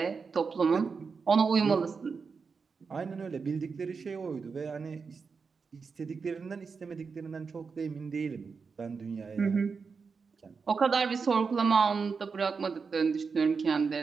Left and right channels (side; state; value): left; quieter; 5.2 dB